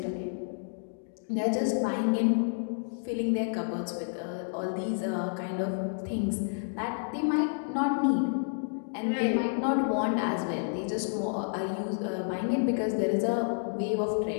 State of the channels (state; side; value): silent; right; digital silence